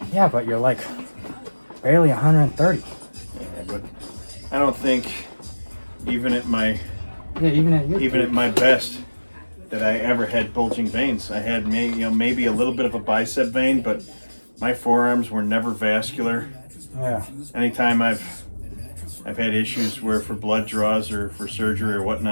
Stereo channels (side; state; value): both; inverted; correlation -1.00